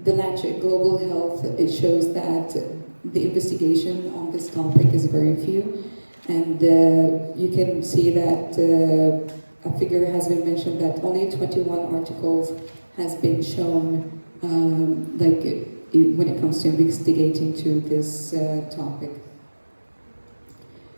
Lancet Global Health, it shows that the investigation on this topic is very few, and you can see that a figure has been mentioned that only 21 articles has been shown when it comes to investigating to this topic.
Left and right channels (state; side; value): inverted; both; correlation -1.00